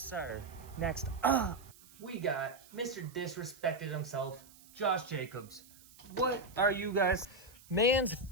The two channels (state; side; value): noise; right; hiss, 23 dB below the sound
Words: sir. Next up, we got Mr. Disrespected himself, Josh Jacobs. What are you guys? Man's